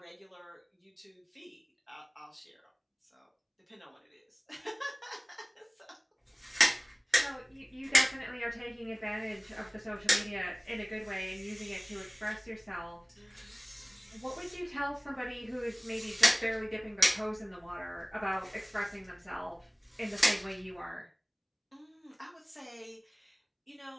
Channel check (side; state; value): both; identical; correlation 1.00